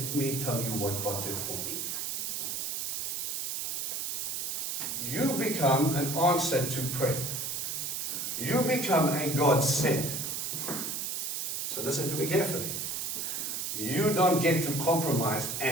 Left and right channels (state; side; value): noise; right; hiss, 2 dB below the sound